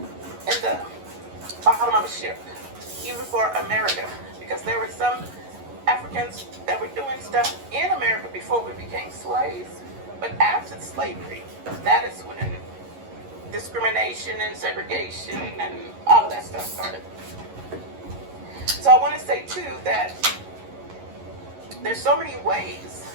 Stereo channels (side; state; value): left; late; 11 ms